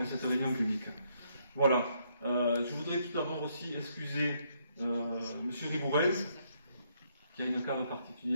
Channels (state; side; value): inverted; both; correlation -0.72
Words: à cette réunion publique. Voilà. Je voudrais tout d'abord aussi excuser Monsieur Ribourel, qui a une cave